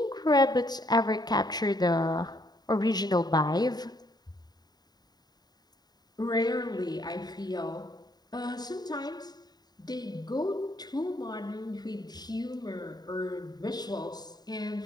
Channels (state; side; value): late; right; 0.20 ms